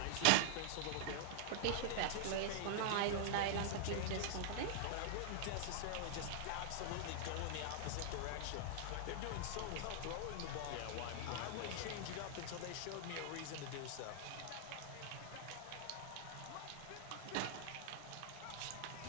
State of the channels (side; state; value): both; different; correlation -0.01